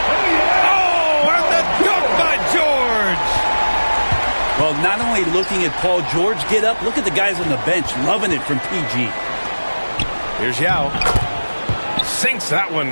Oh, and the dunk by George. Well, not only looking at Paul George get up, look at the guys on the bench loving it from PG. Here's Yao. Sinks that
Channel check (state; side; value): inverted; both; correlation -1.00